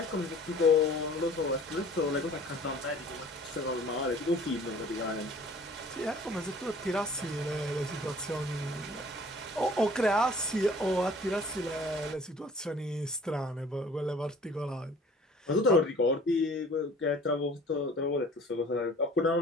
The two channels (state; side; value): normal; both; correlation 0.50